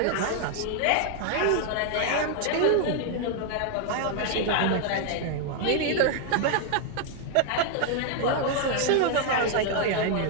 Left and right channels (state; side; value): different; both; correlation 0.00